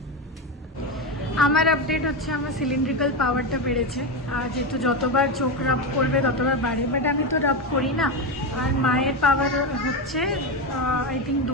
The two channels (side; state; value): both; normal; correlation 0.13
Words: আমার আপডেট হচ্ছে আমার সিলিন্ড্রিক্যাল পাওয়ারটা বেড়েছে, আর যেহেতু যতবার চোখ রাব করবে ততবার বাড়ে, বাট আমি তো রাব করি না। আর মায়ের পাওয়ার হচ্ছে আই থিঙ্ক